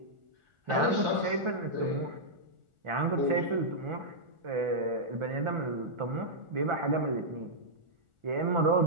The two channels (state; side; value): late; left; 1.4 ms